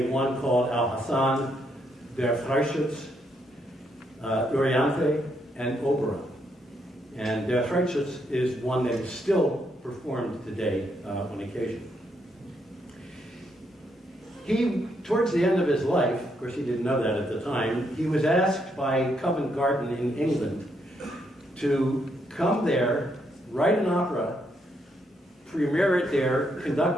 One called Al-Hassan, Der Freischütz, Oriente, and Oberon. And Der Freischütz is one that is still performed today on occasion. He, towards the end of his life, of course he didn't know that at the time, he was asked by Covent Garden in England to come there, write an opera, premiere it there,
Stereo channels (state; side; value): normal; both; correlation 0.76